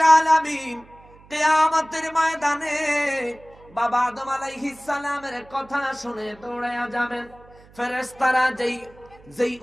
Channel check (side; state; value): right; noise; hum, 25 dB below the sound